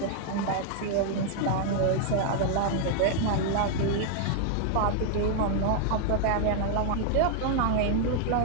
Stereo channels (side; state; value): both; different; correlation -0.01